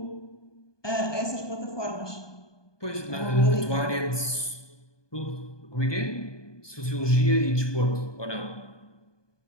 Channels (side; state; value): right; late; 1.2 ms